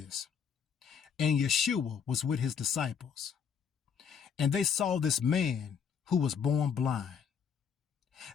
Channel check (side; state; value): right; quieter; 7.0 dB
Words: And Yeshua was with his disciples, and they saw this man who was born blind.